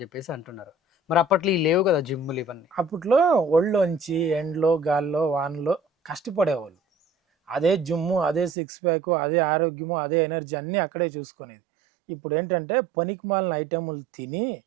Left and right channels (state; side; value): drops out; left; at 8.5 s